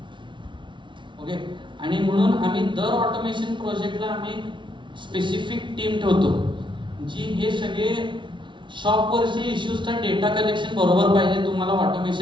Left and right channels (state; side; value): late; left; 0.24 ms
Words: ओके. आणि म्हणून आम्ही दर ऑटोमेशन प्रोजेक्टला आम्ही स्पेसिफिक टीम ठेवतो जी हे सगळे शॉपवरचे इश्यूजचा डेटा कलेक्शन बरोबर पाहिजे तुम्हाला